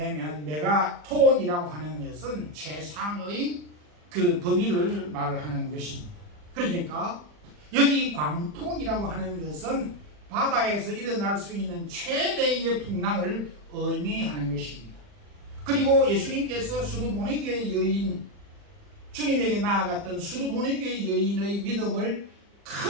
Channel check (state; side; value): late; left; 40 ms